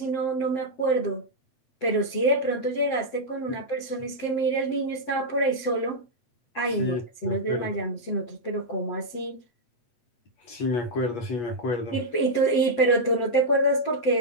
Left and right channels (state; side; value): late; right; 7.8 ms